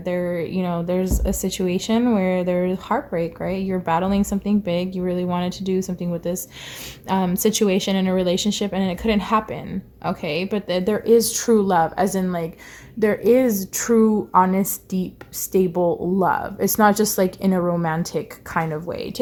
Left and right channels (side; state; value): both; identical; correlation 1.00